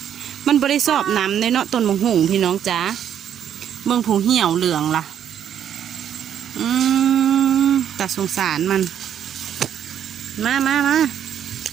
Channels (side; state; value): left; quieter; 9.4 dB